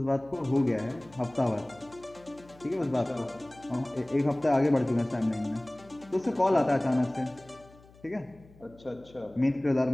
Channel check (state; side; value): noise; left; hum, 25 dB below the sound